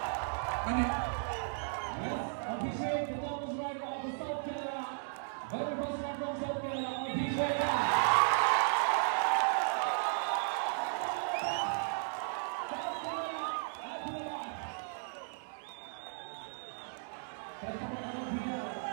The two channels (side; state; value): left; silent; digital silence